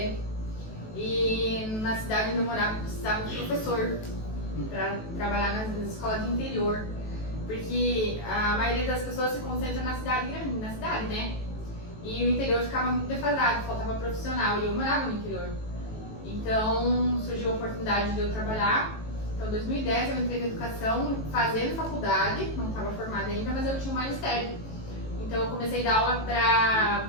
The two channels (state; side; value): late; right; 18 ms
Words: E na cidade onde eu morava precisava de professor para trabalhar nas escolas de interior. Porque a maioria das pessoas se concentra na cidade grande, né? E o interior ficava muito defasado, faltava profissional, e eu morava no interior. Então surgiu a oportunidade de eu trabalhar. Então em 2010 eu entrei na educação, fazendo faculdade, não estava formada ainda, mas eu tinha um magistério. Então eu comecei a dar aula